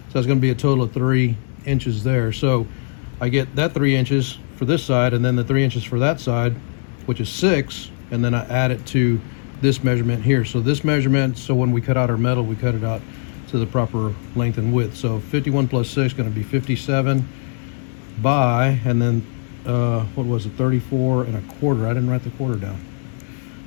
So it's going to be a total of 3 inches there. So I get that 3 inches for this side, and then the 3 inches for that side, which is 6, and then I add it to this measurement here. So this measurement, so when we cut out our metal, we cut it out to the proper length and width. So 51 plus 6 is going to be 57 by, and then what was it, 34 and a quarter. I didn't write the quarter down.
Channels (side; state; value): right; silent; digital silence